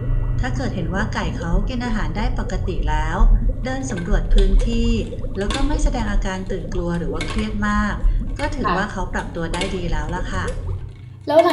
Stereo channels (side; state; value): both; identical; correlation 1.00